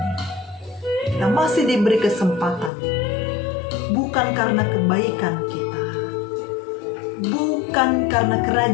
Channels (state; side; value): drops out; right; at 2.7 s